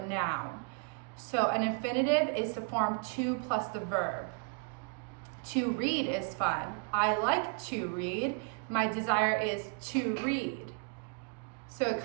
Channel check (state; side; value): quieter; left; 36.3 dB